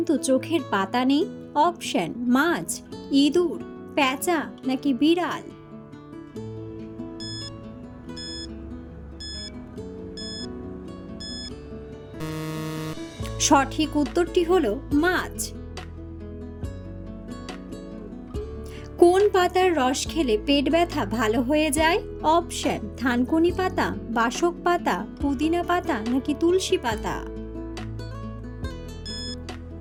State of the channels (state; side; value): identical; both; correlation 1.00